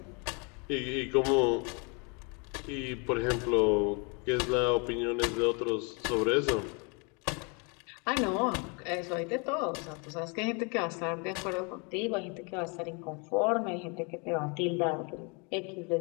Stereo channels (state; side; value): quieter; right; 33.2 dB